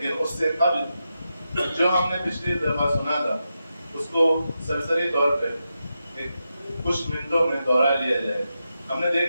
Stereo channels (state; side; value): inverted; both; correlation -0.88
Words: اس سے قبل جو ہم نے پچھلی دفعہ سنا تھا اس کو سرسری طور پہ کچھ منٹوں میں دوہرا لیا جائے. ہم نے